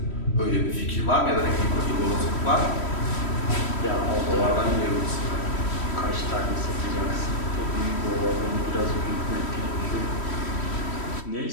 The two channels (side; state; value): right; late; 3.1 ms